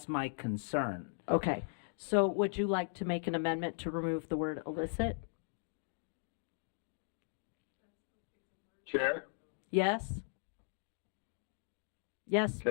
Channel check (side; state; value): right; silent; digital silence